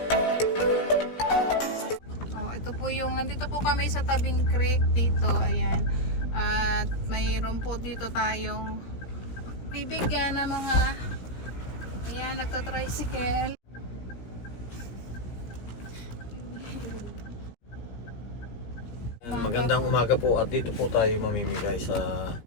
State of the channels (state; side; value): late; right; 17 ms